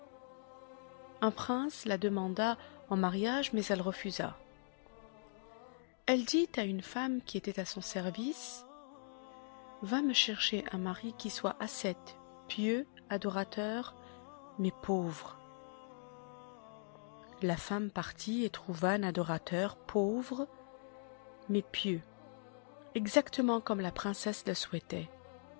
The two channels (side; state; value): right; silent; digital silence